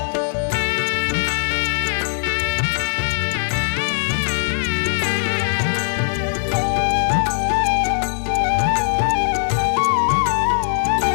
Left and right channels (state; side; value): silent; right; 66 dB below the other